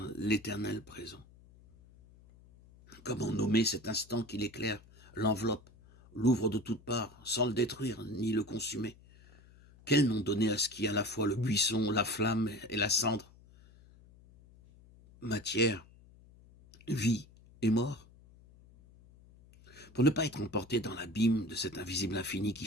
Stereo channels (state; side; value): noise; left; hum, 25 dB below the sound